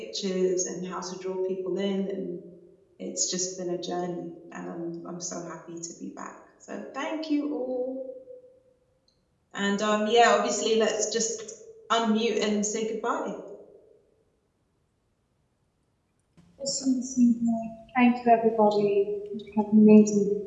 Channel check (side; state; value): both; identical; correlation 1.00